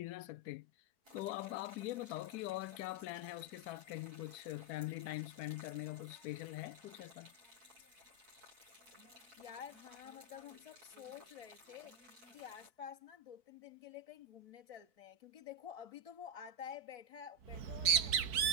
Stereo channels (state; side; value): late; left; 4.5 ms